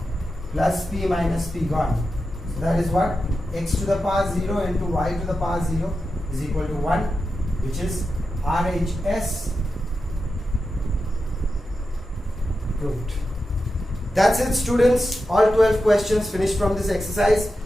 Plus P minus P gone. So that is what? X to the power 0 into y to the power 0 is equal to 1, which is RHS proved. That's it, students. All 12 questions finished from this exercise.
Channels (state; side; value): normal; both; correlation 0.90